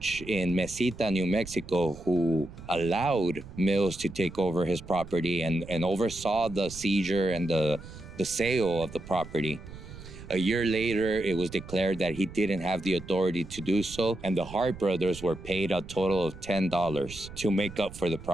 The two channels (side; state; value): right; noise; rumble, 15 dB below the sound